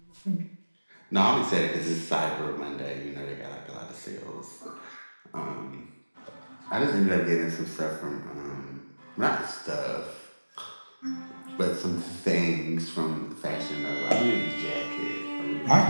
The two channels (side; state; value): both; inverted; correlation -1.00